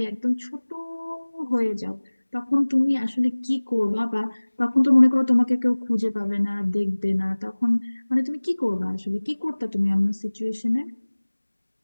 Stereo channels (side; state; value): both; inverted; correlation -1.00